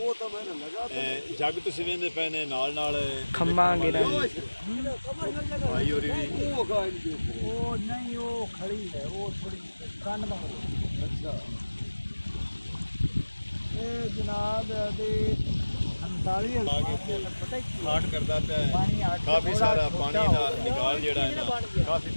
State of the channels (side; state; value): both; inverted; correlation -1.00